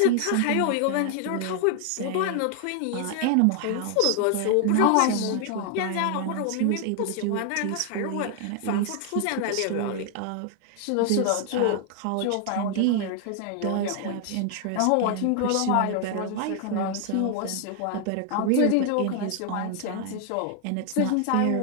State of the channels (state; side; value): different; both; correlation 0.00